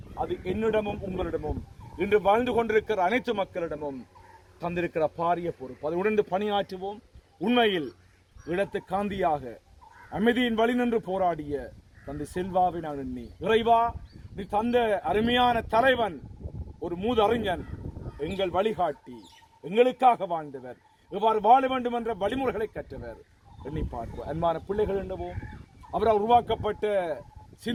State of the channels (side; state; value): both; identical; correlation 1.00